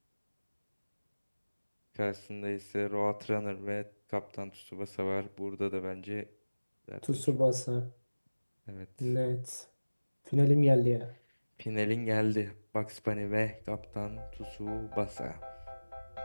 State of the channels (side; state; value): both; inverted; correlation -1.00